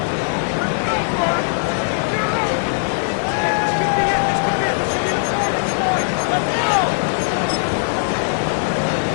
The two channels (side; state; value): right; silent; digital silence